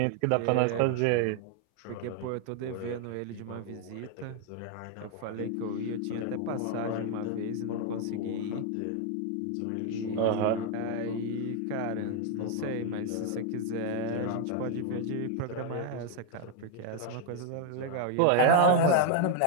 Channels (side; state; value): both; different; correlation 0.00